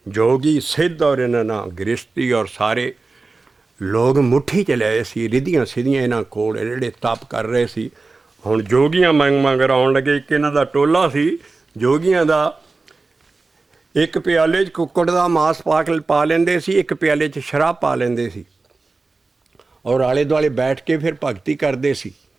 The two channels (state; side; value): quieter; left; 3.7 dB